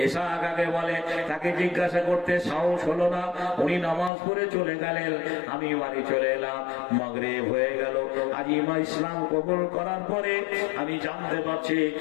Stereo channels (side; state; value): right; drops out; at 4.1 s